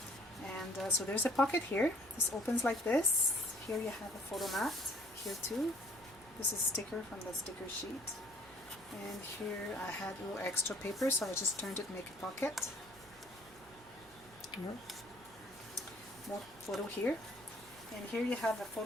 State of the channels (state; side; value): noise; right; hum, 26 dB below the sound